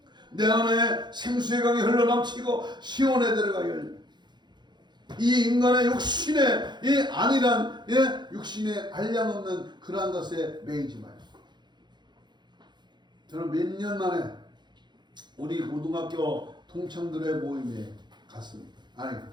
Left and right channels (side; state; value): left; late; 0.21 ms